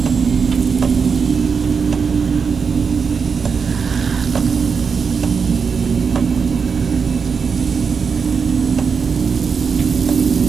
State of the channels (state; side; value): quieter; left; 5.7 dB